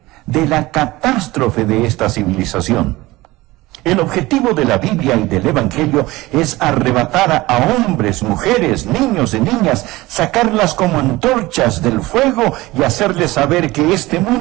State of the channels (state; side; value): quieter; left; 19.6 dB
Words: de la catástrofe de esta civilización. El objetivo de la Biblia y del Evangelio es arrebatar a hombres, mujeres, niños y niñas, sacarlas como antorchas del fuego y hacerles saber que este